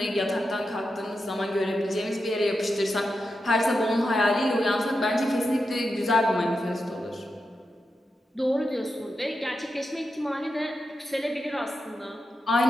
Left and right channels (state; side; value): normal; both; correlation 0.89